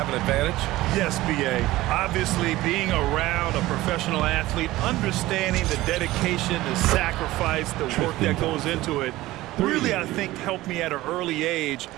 an advantage? Yes, B.A. Obviously, being around a professional athlete, understanding the dedication, the sacrifice, the work that goes into it, really, I think, helped me at an early age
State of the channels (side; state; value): left; quieter; 17.4 dB